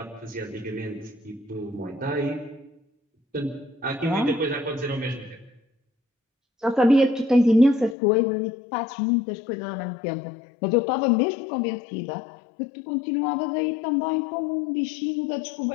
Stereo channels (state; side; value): drops out; right; at 8.0 s